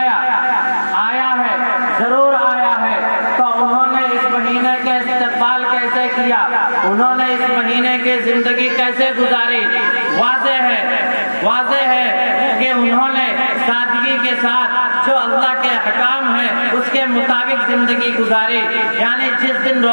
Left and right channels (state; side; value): inverted; both; correlation -1.00